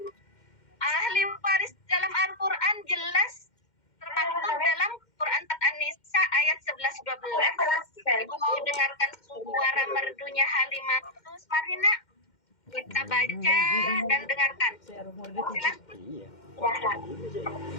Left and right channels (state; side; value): late; right; 2.1 ms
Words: Ahli waris dalam Al-Quran jelas termaktub dalam Quran An-Nisa ayat 11-12. Ibu mau dengarkan suara merdunya Halimatus? Mari nak, kita baca dan dengarkan. Silakan. Iya.